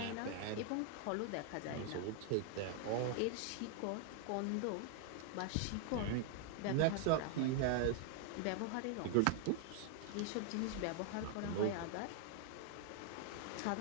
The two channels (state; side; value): different; both; correlation 0.00